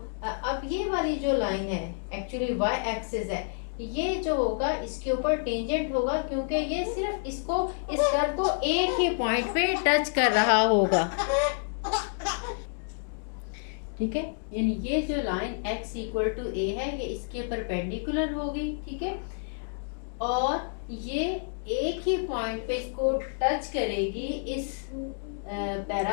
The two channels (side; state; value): right; silent; digital silence